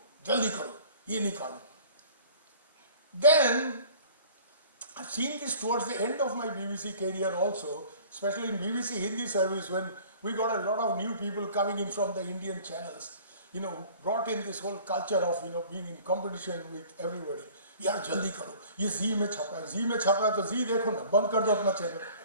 jaldi karo, ye nikalo. Then, I've seen this towards the end of my BBC career also, especially in BBC Hindi service, when we got a lot of new people coming in from the Indian channels, brought in this whole culture of, being in competition with everybody. Yaar, jaldi karo, ye Zee mein chhapa hai, to Zee dekho na, band kar do apna channel.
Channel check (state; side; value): inverted; both; correlation -0.48